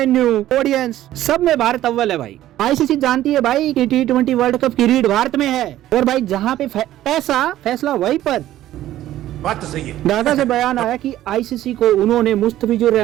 ऑडियंस, सब में भारत अव्वल है भाई। आईसीसी जानती है भाई कि T20 वर्ल्ड कप की रीढ़ भारत में है, और भाई जहाँ पे पैसा फैसला वहीं पर। बात तो सही है। ढाका से बयान आया कि आईसीसी को उन्होंने मुस्तफिजुर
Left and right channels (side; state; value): left; quieter; 13.6 dB